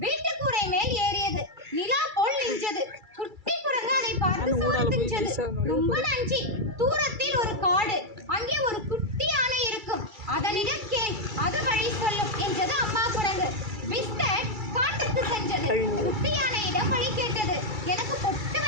வீட்டு கூரை மேல் ஏறியது. நிலா போல் நின்றது. குட்டி குரங்கு அதை பார்த்து சோர்த்துச்சது. ரொம்ப நன்றி, தூரத்தில் ஒரு காடு, அங்கே ஒரு குட்டி யானை இருக்கும், அதனிடம் கேள், அது வழி சொல்லும் என்றது அம்மா குரங்கு. பிஸ்கட் காட்டுக்கு சென்றது. குட்டி யானையிடம் வழி கேட்டது. எனக்கு பொட்டு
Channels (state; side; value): late; left; 2.3 ms